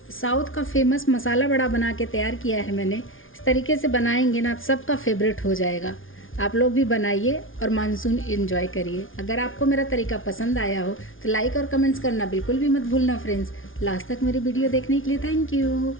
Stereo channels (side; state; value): right; late; 0.58 ms